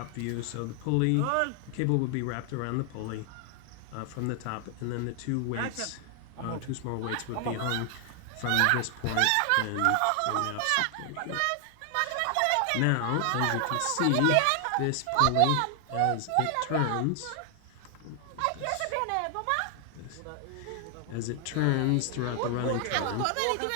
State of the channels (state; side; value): different; both; correlation 0.00